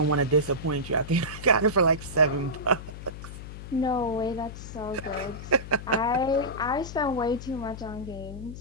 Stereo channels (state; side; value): noise; left; hum, 11 dB below the sound